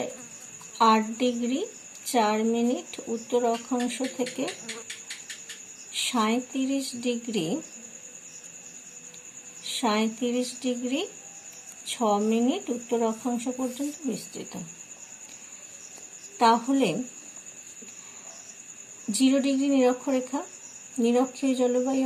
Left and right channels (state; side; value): identical; both; correlation 1.00